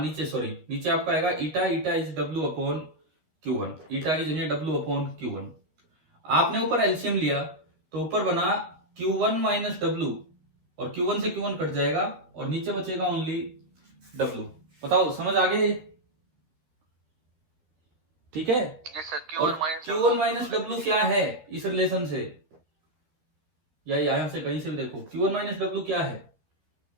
सॉरी नीचे आपका आएगा eta, eta is W upon Q1। Eta की जगह डब्ल्यू अपॉन Q1। आपने ऊपर एलसीएम लिया तो ऊपर बना Q1 माइनस डब्ल्यू, और Q1 से Q1 कट जाएगा और नीचे बचेगा ओनली डब्ल्यू। बताओ समझ आ गई? ठीक है। और Q1 माइनस डब्ल्यू क्या है इस रिलेशन से, या यहां से कहीं से भी देखो, Q1 माइनस डब्ल्यू क्या है?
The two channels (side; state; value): left; late; 13 ms